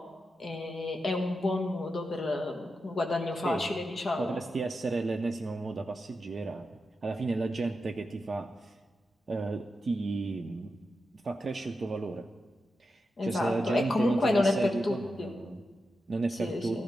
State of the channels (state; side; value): normal; both; correlation 0.88